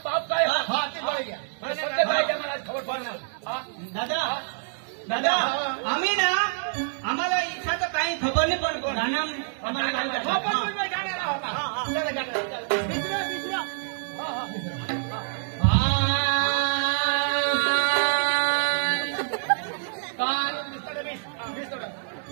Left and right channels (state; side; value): silent; left; digital silence